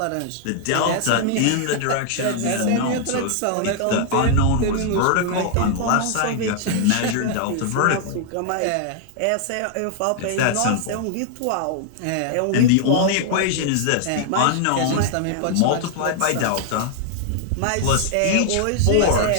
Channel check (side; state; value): both; different; correlation 0.00